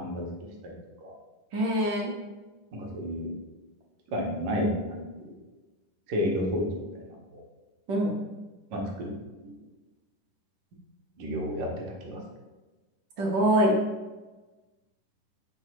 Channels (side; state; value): left; late; 10 ms